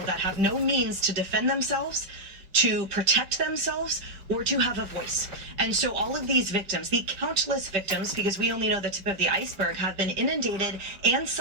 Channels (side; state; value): left; late; 5.1 ms